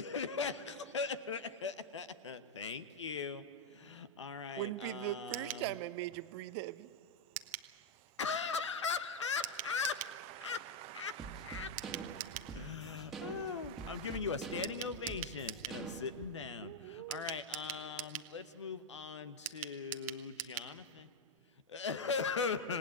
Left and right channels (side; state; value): both; normal; correlation 0.01